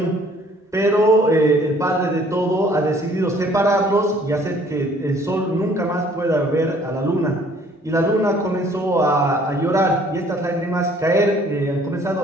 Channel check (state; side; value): normal; both; correlation 0.58